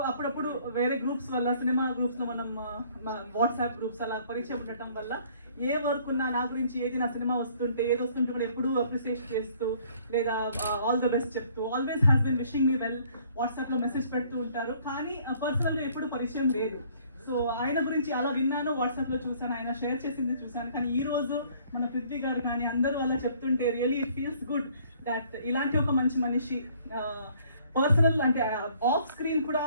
అప్పుడప్పుడు వేరే గ్రూప్స్ వల్ల సినిమా గ్రూప్స్లో మనం వాట్సాప్ గ్రూప్స్ అలా పరిచయం ఉండటం వల్ల ఏ వర్క్ ఉన్నా నా గురించి ఏది నా సినిమా వస్తుంటే ఏది వస్తుంటే కూడా ఎప్పుడూ అప్రిసియేట్ చేస్తూ లేదా ఆల్ ద బెస్ట్ చెప్తూ always has been wishing me well వాట్సాప్లో మెసేజ్ పెడుతూ ఉంటారు. కానీ పర్సనల్గా ఎప్పుడు పరిచయం లేదు. సో ఆయన గురించి అలా విన్నాను, వాట్సాప్లో చూసాను, ఆయన షేర్ చేసింది చూసాను. కానీ ఈ రోజు మన పృథ్వీ గారు కానీ అందరూ అలా చెప్తుంటే really it feels good that ఇలాంటి ఒక మంచి మనిషి పర్సనల్ అంటే ఆఫ్ స్క్రీన్ కూడా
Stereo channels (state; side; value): inverted; both; correlation -0.59